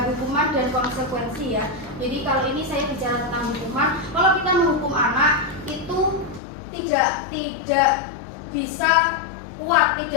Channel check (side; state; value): right; drops out; at 6.4 s